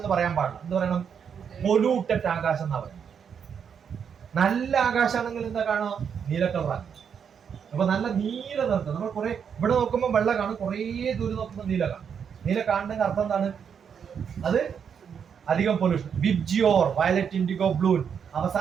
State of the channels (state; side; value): quieter; left; 7.3 dB